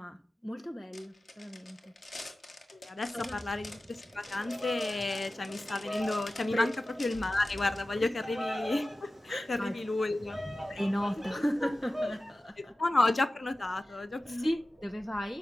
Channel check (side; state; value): both; normal; correlation 0.96